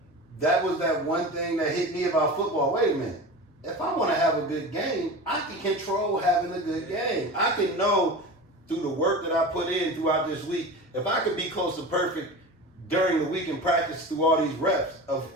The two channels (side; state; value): both; normal; correlation 0.31